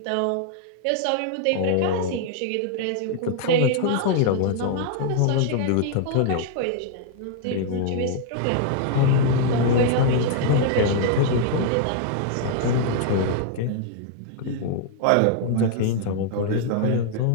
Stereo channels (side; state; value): both; different; correlation -0.01